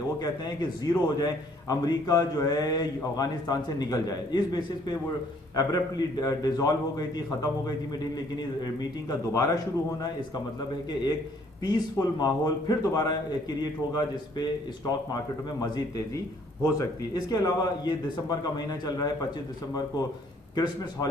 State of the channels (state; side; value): normal; both; correlation 0.63